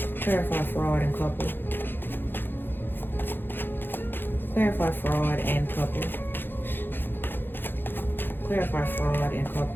Clarify fraud and couple. Clarify fraud and couple. Clarify fraud and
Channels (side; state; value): right; late; 0.099 ms